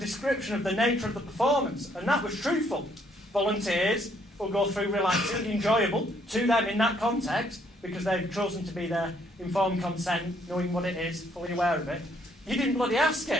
of the nature of the performance, and that was truthful. Volunteers will go through relaxing, enjoyable to them in that context because they've chosen to be there, informed consent, knowing what it is, fully aware of it. You didn't bloody ask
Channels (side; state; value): both; normal; correlation 0.68